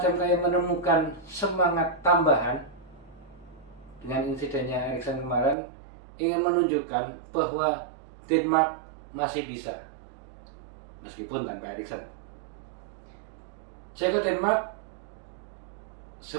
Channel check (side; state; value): left; drops out; at 5.6 s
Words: kayak menemukan semangat tambahan dengan insidennya Eriksen kemarin, ingin menunjukkan bahwa Denmark masih bisa meskipun tanpa Eriksen. Ceko Denmark